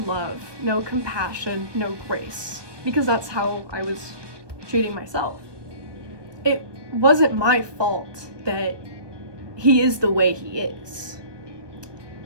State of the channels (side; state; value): left; late; 1.2 ms